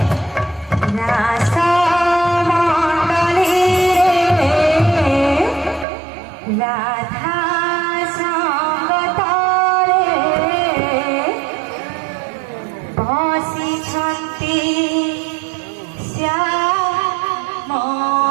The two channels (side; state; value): left; drops out; at 5.9 s